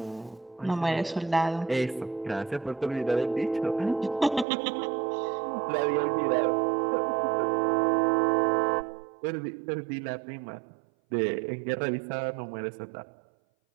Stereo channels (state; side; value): drops out; left; at 4.5 s